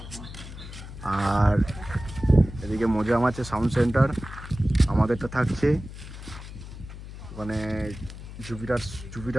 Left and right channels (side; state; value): left; noise; hum, 13 dB below the sound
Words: আর এদিকে মোজাম আছে সাউন্ড সেন্টার। আমাদেরটা থাকছে ওখানে,